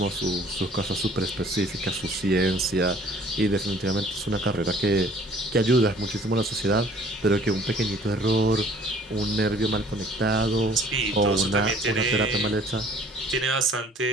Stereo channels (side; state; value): both; normal; correlation 0.54